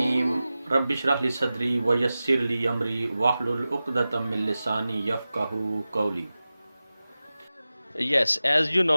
Rabbi shrah li sadri wa yassir li amri wahlul uqdatam min lisani yafqahu qawli. Yes, as you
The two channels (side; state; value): both; inverted; correlation -0.95